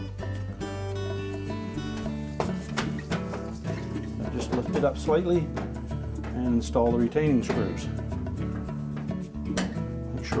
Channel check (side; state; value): both; identical; correlation 1.00